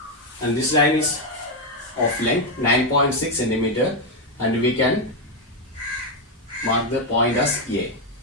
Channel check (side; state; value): both; normal; correlation 0.04